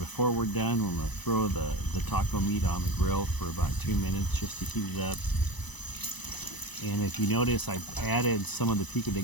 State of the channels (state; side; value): late; right; 1.0 ms